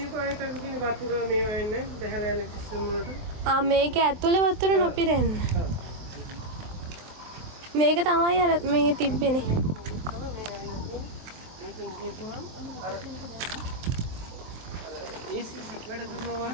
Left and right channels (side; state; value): left; late; 23 ms